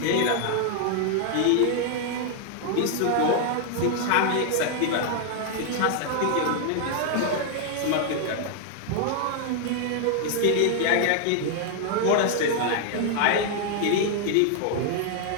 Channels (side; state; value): both; different; correlation 0.00